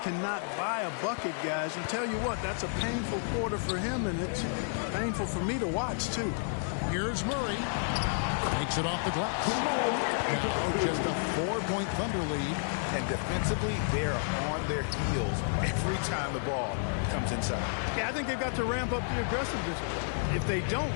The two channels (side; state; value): right; silent; digital silence